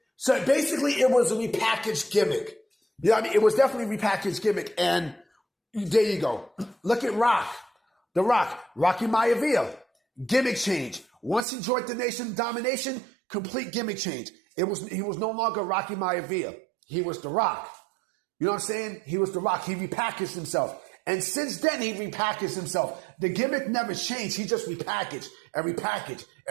So basically it was a repackaged gimmick. You know what I mean? It was definitely a repackaged gimmick. And there you go. Look at Rock. The Rock. Rocky Maivia. Gimmick change. Once he joined the Nation of Domination, complete gimmick change. He was no longer Rocky Maivia. He was The Rock. You know what I'm saying? He was The Rock. He repackaged himself. And since then, he repackaged himself. The gimmick never changed. He just repackaged and repackaged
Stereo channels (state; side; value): drops out; left; at 11.5 s